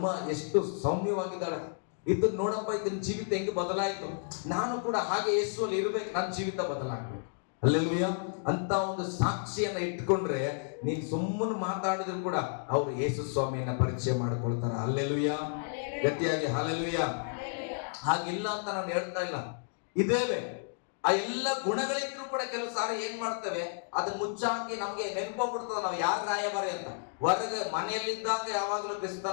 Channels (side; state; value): right; silent; digital silence